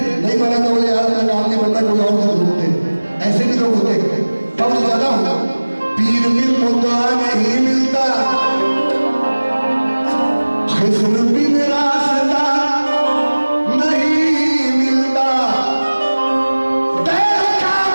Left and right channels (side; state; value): both; inverted; correlation -1.00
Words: नहीं बना तो बोले यार मेरा काम नहीं बन रहा, कोई और कर ढूंढते, ऐसे भी लोग होते हैं। तब ज्यादा हूँ, पीर मिल मुद्दा नहीं मिलता, खिस्र भी मेरा